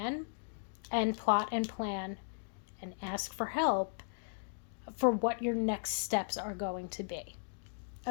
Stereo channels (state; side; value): silent; right; digital silence